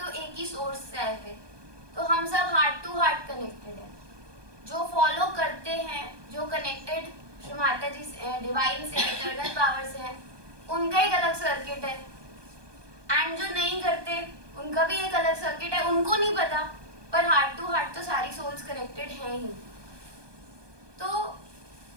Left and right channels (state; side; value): late; left; 1.2 ms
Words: एक ही सोर्स से आए थे, तो हम सब हार्ट टू हार्ट कनेक्टेड हैं। जो फॉलो करते हैं, जो कनेक्टेड श्री माता जी से, डिवाइन से, इटर्नल पावर से हैं, उनका एक अलग सर्किट है। एंड जो नहीं करते उनका भी एक अलग सर्किट है, उनको नहीं पता, पर हार्ट टू हार्ट तो सारी सोल्स कनेक्टेड हैं ही। तो